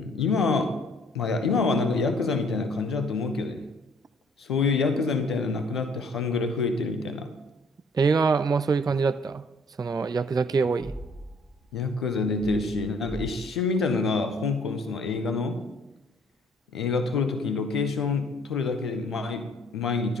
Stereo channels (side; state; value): both; normal; correlation 0.59